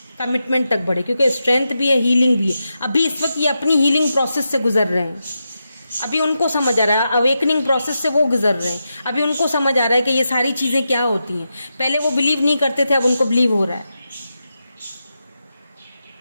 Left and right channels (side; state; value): both; inverted; correlation -0.88